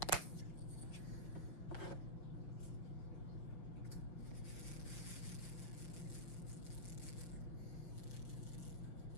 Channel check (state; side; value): late; right; 5.4 ms